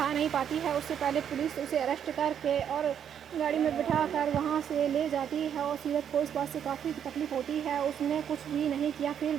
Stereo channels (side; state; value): left; quieter; 8.7 dB